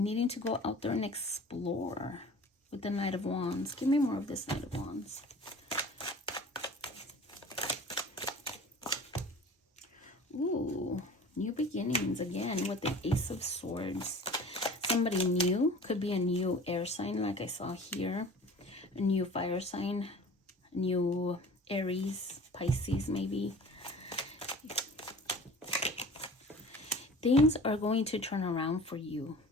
to go out there and explore with the Knight of Wands. Give me more of this Knight of Wands. Ooh, new beginnings again with the Ace of Swords. Somebody new, could be a new air sign like I saw here, a new fire sign, a new Aries, Pisces maybe. Things are going to turn around for you,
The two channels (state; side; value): normal; both; correlation 0.43